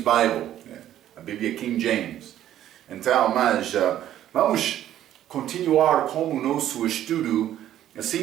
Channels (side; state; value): left; quieter; 11.9 dB